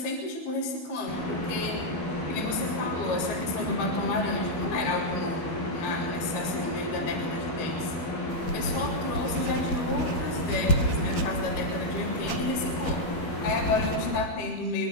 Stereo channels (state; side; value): late; right; 12 ms